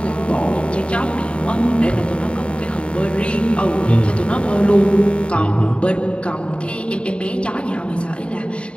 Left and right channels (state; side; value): late; right; 0.057 ms